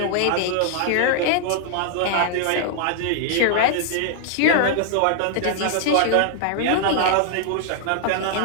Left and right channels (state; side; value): different; both; correlation -0.01